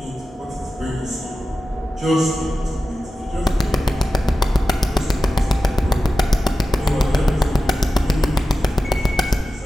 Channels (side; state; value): both; normal; correlation 0.94